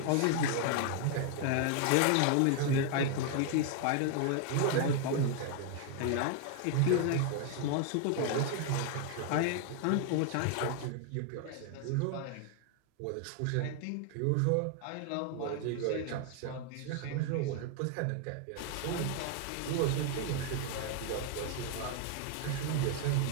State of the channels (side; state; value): both; different; correlation 0.00